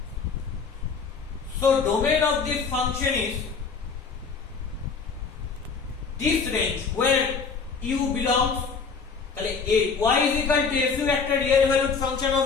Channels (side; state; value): right; quieter; 5.2 dB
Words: So domain of this function is this range where u belongs. তাহলে y is equal to f একটা real valued function of